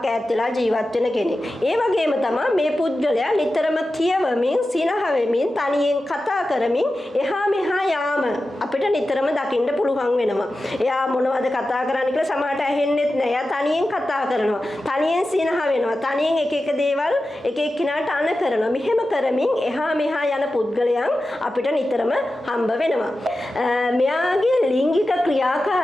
ඈත් වෙලා ජීවත් වෙන කෙනෙක්. ඒ වගේම තමයි මේ පුද්ගලයා නිතරම කියවමින් සිනහ වෙමින් තනියෙන් කතා කරමින් එහා මෙහා යාම අපිට නිතරම දකින්න පුළුවන් වෙනවා. එයා මොනවද කතා කරන්නේ කියලා සමහරට ඇහෙන්නෙත් නෑ. එයා තනියෙන් කතා කරනවා. තනියෙන් සිනහ වෙනවා. තනියෙන් එක එක දේවල් එක එක්කිනාට අණ කරනවා. මෙහෙම කරමින් එහා මෙහා යන පුද්ගලයන් අපිට නිතරම හම්බ වෙනවා. මෙයාගේ ලිංගික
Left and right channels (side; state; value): both; normal; correlation 0.93